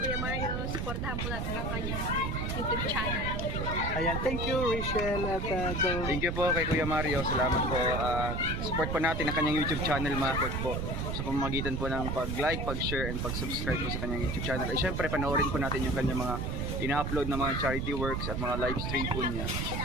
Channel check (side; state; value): right; noise; rumble, 1 dB below the sound